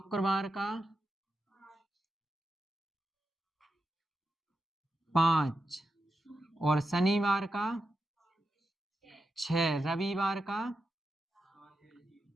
का 5 और शनिवार का 6, रविवार का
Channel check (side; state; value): both; normal; correlation 0.88